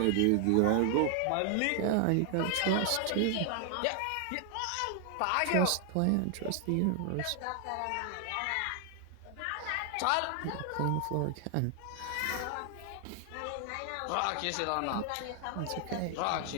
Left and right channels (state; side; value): different; both; correlation 0.00